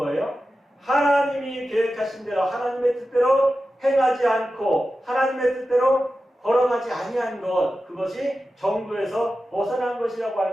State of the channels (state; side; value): normal; both; correlation 0.93